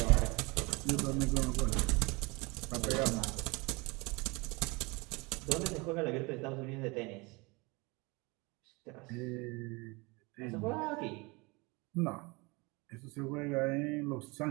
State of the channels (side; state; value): left; quieter; 26.5 dB